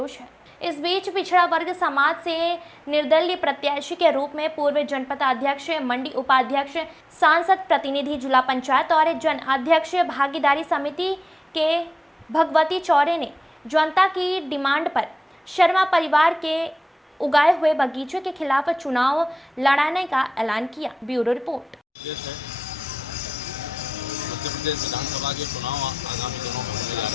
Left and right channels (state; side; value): normal; both; correlation 0.94